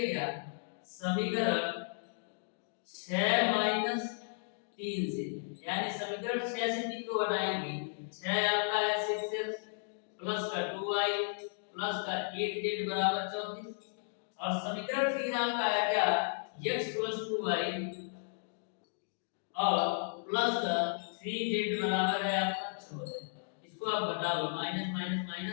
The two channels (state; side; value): silent; right; digital silence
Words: क्या, समीकरण 6 माइनस 3 से, यानी समीकरण 6 से 3 को घटाएंगे, 6 आपका है 6x प्लस का 2y प्लस का 8z बराबर 34। और समीकरण 3 आपका है क्या, x प्लस 2y और प्लस का 3z बराबर है आपका 14। इसको आप घटा लो, माइनस माइनस